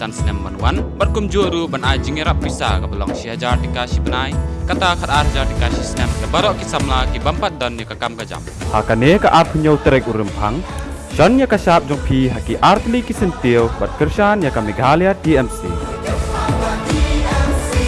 sinem manwan. Barkum juru ban ajing rap pisa ka belong syajar dikasih benai. Kata khat arjar dikasih sinem. Barok kisamla ki bampat dan ni ka kam ka jam. Hakane ka art punya trek urempang. Shan ya ka sap jong pi haki artli ki sentiu bat kersan ya ka Meghalaya TMC.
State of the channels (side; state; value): both; identical; correlation 1.00